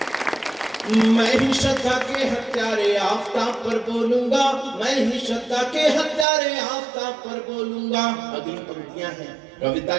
मैं ही श्रद्धा के हत्यारे आफताब पर बोलूंगा, मैं ही श्रद्धा के हत्यारे आफताब पर बोलूंगा। अगली पंक्तियां हैं, कविता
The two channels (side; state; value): left; drops out; at 6.2 s